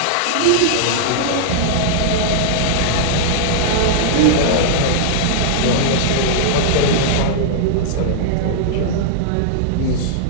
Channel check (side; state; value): both; different; correlation -0.01